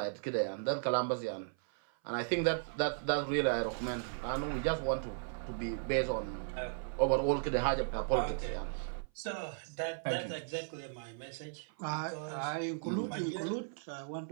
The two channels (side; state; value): left; silent; 54 dB below the other